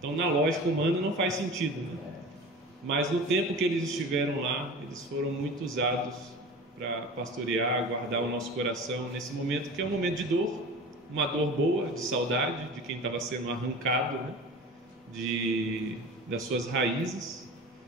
na lógica humana não faz sentido, né? Mas no tempo que eles estiveram lá, eles foram muito usados para pastorear, guardar o nosso coração nesse momento que é um momento de dor, uma dor boa, de saudade de quem estava sendo arrancado, né? Das suas raízes,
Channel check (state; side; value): normal; both; correlation 0.36